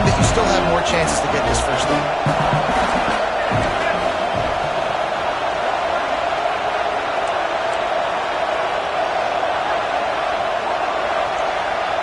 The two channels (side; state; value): both; identical; correlation 1.00